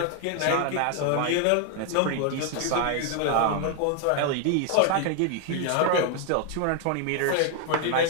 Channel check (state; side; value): different; both; correlation 0.00